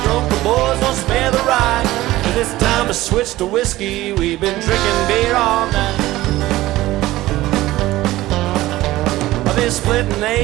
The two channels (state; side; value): quieter; left; 16.8 dB